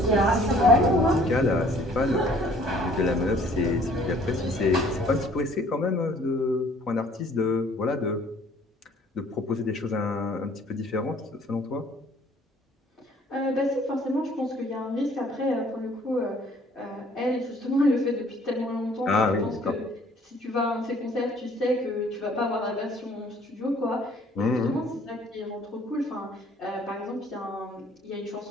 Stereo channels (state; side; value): normal; both; correlation 0.56